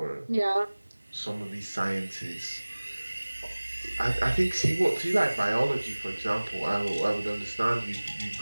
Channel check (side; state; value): both; inverted; correlation -1.00